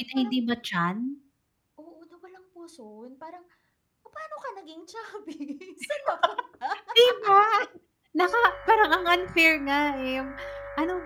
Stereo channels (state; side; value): identical; both; correlation 1.00